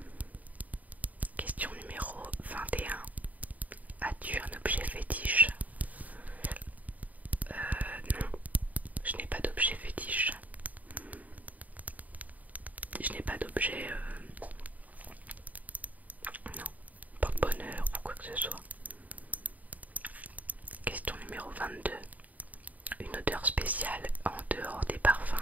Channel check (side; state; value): left; late; 0.075 ms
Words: Question numéro 21. As-tu un objet fétiche? Non, je n'ai pas d'objet fétiche. Je n'ai pas d'objet, non, porte-bonheur ou quoi que ce soit. Question numéro 22. Une odeur spéciale en dehors des